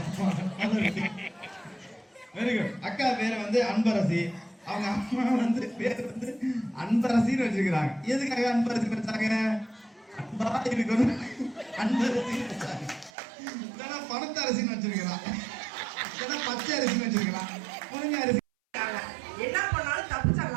Very good. அக்கா பேர் வந்து அன்பரசி, அவங்க அம்மா வந்து பேர் வந்து அன்பரசின்னு வச்சிருக்கிறாங்க. எதுக்காக அன்பரசி வச்சாங்க? அன்பா இருக்கணும் அன்பரசி வச்சாங்க. இல்லைன்னா பணத்த அரிசின்னு வச்சிருக்கிறான், இல்லைன்னா பச்சை அரிசின்னு வச்சிருக்கிறான், முருங்கை அரிசி. என்ன பண்ணாலும் தப்பு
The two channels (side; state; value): left; drops out; at 13.1 s